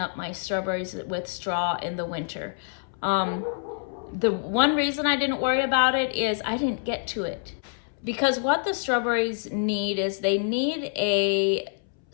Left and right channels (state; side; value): silent; right; 61 dB below the other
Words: my strawberries with straw in the winter. The one reason I didn't worry about it is I didn't get to it. Because what the strawberries need is they need a